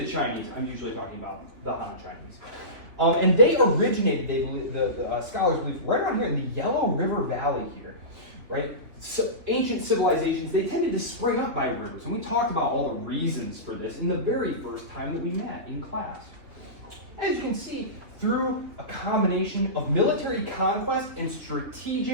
Chinese, I'm usually talking about the Han Chinese. And they originated, they believe, the scholars believe, right around here in the Yellow River Valley here, right? So ancient civilizations, they tended to spring up by rivers, and we talked about all the reasons for this in the very first time that we met in class. As you can see, through a combination of military conquest and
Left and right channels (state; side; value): late; left; 3.3 ms